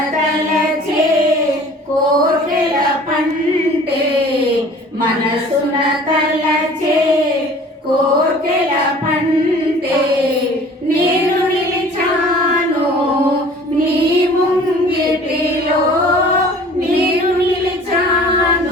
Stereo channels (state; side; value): normal; both; correlation 0.48